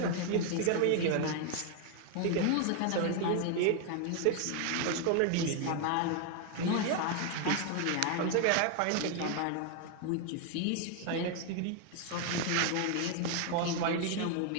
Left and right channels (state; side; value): different; both; correlation 0.01